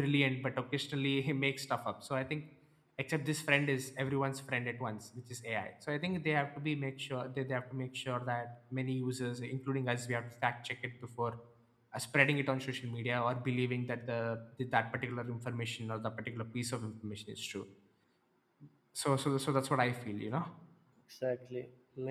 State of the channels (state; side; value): identical; both; correlation 1.00